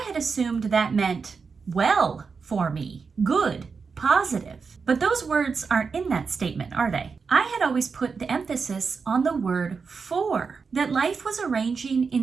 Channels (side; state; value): left; quieter; 5.2 dB